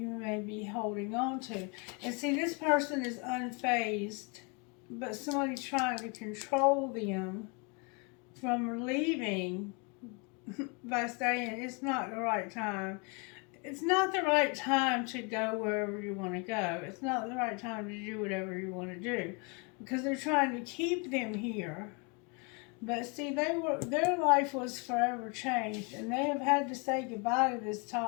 may be holding on to. And see, this person is unfazed, but somebody's trying to control them from leaving by saying it's not the right time. It's not the right time to go wherever you want to go. It's not the right time to do whatever you want to do because they're trying to keep them here. But see, their life was forever changed, and they have had to say goodbye to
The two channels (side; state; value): right; quieter; 31.1 dB